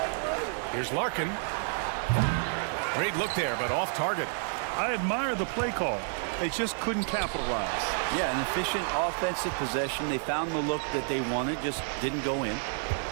Here's Larkin. Great look there, but off target. I admire the play call. They just couldn't capitalize. Yeah, an efficient offensive possession. They found the look that they wanted, just didn't go in.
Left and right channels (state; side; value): silent; left; 58 dB below the other